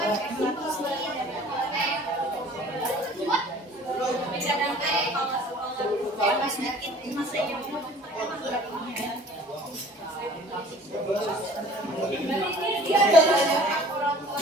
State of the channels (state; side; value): normal; both; correlation 0.49